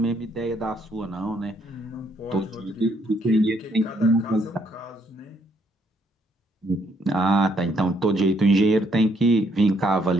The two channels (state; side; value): normal; both; correlation 0.70